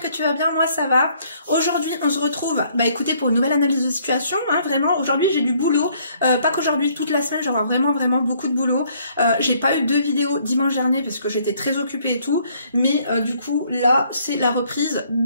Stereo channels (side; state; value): both; inverted; correlation -0.64